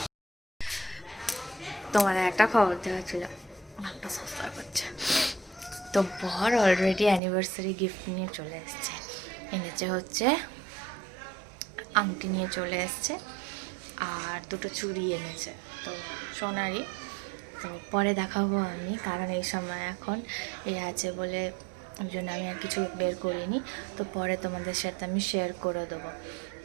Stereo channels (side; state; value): left; drops out; at 7.2 s